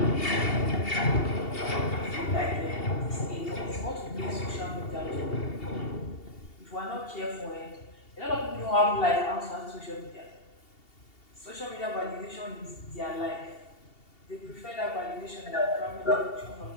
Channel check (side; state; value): right; late; 2.7 ms